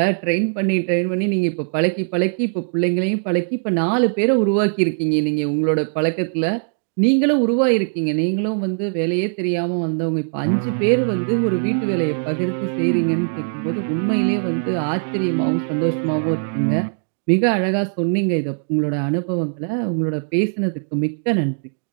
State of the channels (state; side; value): silent; left; digital silence